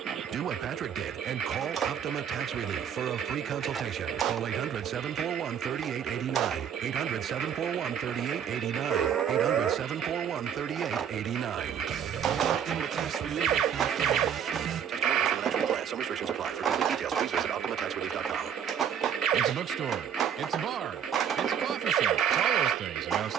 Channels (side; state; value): left; quieter; 8.4 dB